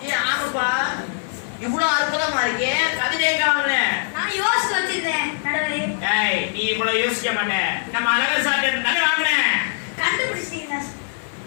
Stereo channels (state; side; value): silent; right; digital silence